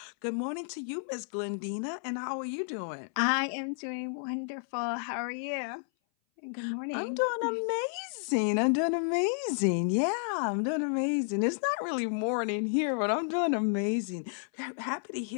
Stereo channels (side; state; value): right; silent; 57 dB below the other